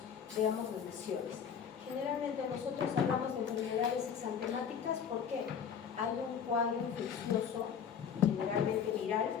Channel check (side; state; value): right; quieter; 7.5 dB